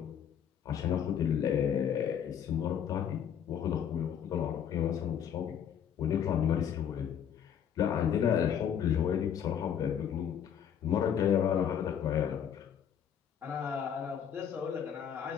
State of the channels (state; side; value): quieter; right; 8.6 dB